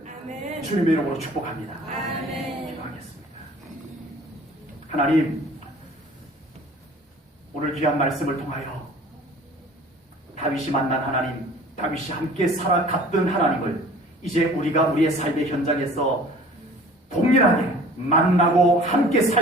아멘, 주님의 이름으로 축복합니다. 아멘, 기도하겠습니다. 하나님, 오늘 귀한 말씀을 통하여 다윗이 만난 하나님, 다윗이 함께 살아갔던 하나님을 이제 우리가 우리의 삶의 현장에서 동일하게 만나고 함께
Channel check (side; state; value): both; normal; correlation 0.48